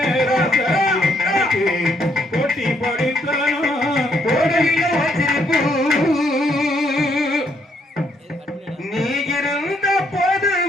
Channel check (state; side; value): normal; both; correlation 0.72